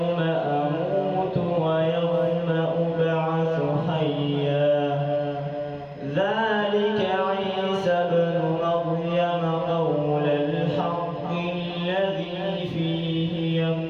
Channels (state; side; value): identical; both; correlation 1.00